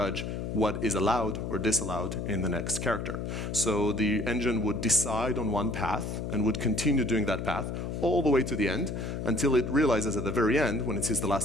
what is allowed or disallowed in the next character. So the engine would decide on one path and would continue doing that path all the way to the end until it realizes at the very end, when it sees the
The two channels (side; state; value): left; noise; hum, 4 dB below the sound